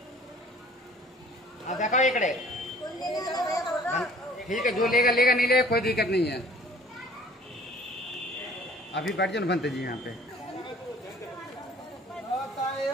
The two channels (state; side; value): normal; both; correlation 0.52